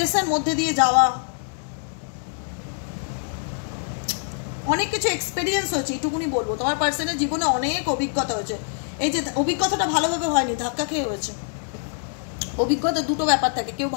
মধ্যে দিয়ে যাওয়া, অনেক কিছু এক্সপেরিয়েন্স হয়েছে। এইটুকুনি বলবো, তোমার পার্সনের জীবনে অনেক অভিজ্ঞতা হয়েছে। এই যে অভিজ্ঞতাটা ভালোভাবে হয়নি, ধাক্কা খেয়ে হয়েছে। অভিজ্ঞতা দুটো ব্যাপার থাকে, কেউ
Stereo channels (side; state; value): right; silent; 62 dB below the other